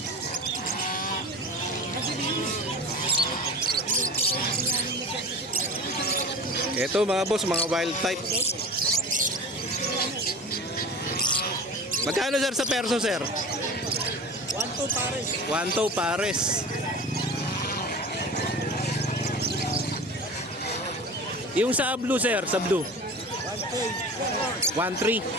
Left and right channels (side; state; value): both; normal; correlation 0.35